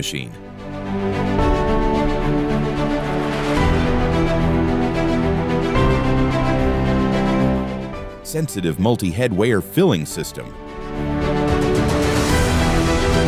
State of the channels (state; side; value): identical; both; correlation 1.00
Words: Sensitive multi-head weigher filling system.